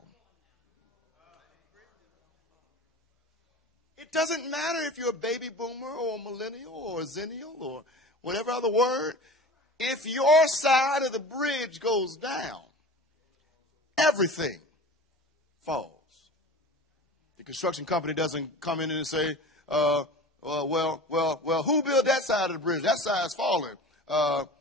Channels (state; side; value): normal; both; correlation 0.36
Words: it doesn't matter if you're a baby boomer or a millennial or a zennial or whatever other word. If your side of the bridge goes down, everything falls. The construction company doesn't come in and say, well, who built that side of the bridge? That side's falling.